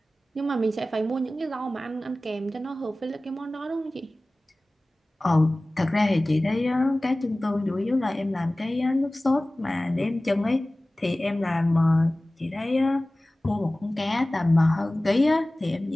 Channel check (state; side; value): normal; both; correlation 0.98